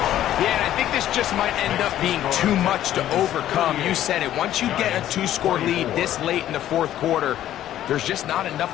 Yeah, and I think this just might end up being too much to overcome. You said it. Once you get a 2-score lead this late in the fourth quarter, there's just not enough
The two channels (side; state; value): right; quieter; 12.3 dB